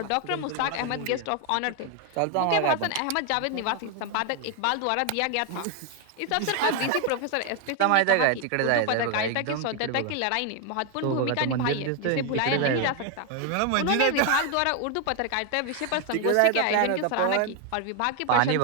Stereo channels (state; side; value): different; both; correlation 0.01